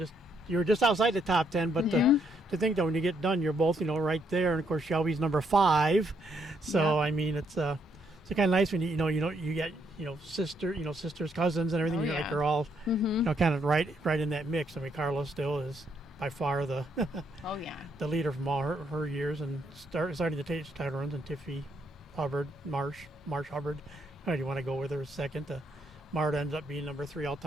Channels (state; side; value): normal; both; correlation 0.74